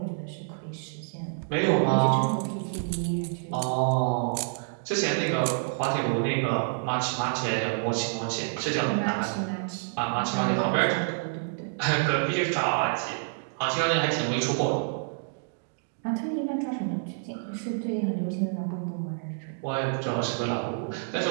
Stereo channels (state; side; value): silent; left; digital silence